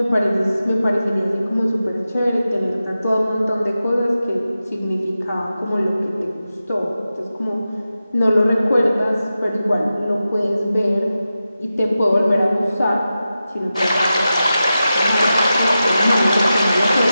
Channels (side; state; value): both; inverted; correlation -0.92